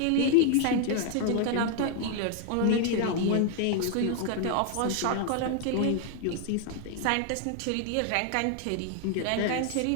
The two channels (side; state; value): both; different; correlation 0.00